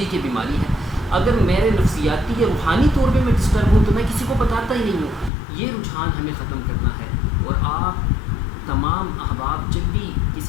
یہ بیماری ہے، اگر میرے نفسیاتی یا روحانی طور پہ میں ڈسٹرب ہوں تو میں کسی کو بتاتا ہی نہیں ہوں۔ یہ رجحان ہمیں ختم کرنا ہے، اور آپ تمام احباب جب بھی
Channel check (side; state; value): right; drops out; at 5.3 s